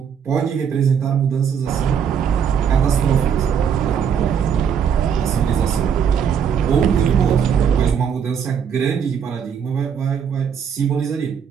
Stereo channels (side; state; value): left; quieter; 7.6 dB